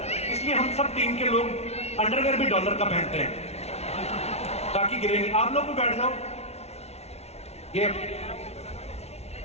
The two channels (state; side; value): late; right; 0.31 ms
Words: इसलिए हम सब टीम के लोग अंडरवेयर भी डॉलर का पहनते हैं ताकि गिरे नहीं। आप लोग भी बैठ जाओ, ये